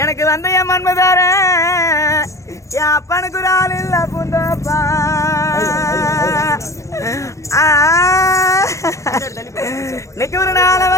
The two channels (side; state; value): right; late; 0.15 ms